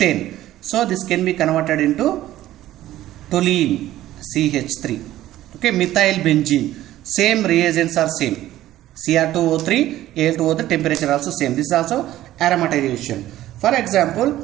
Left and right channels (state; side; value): quieter; left; 14.2 dB